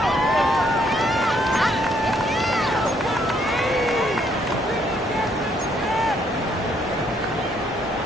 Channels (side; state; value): both; normal; correlation 0.69